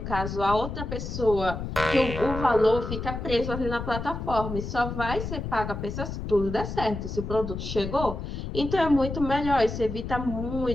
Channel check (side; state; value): left; noise; rumble, 6 dB below the sound